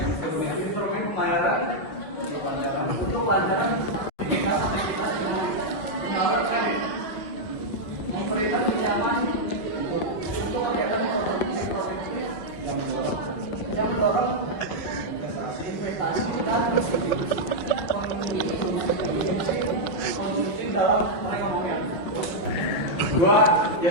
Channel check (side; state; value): right; late; 6.2 ms